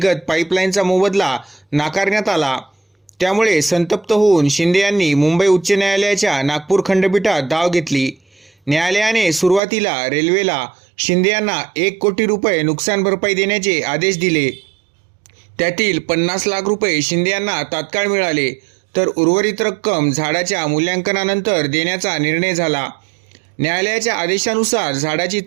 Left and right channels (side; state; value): left; drops out; at 9.6 s